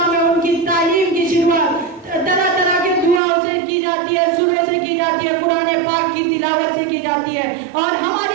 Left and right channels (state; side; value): drops out; left; at 3.2 s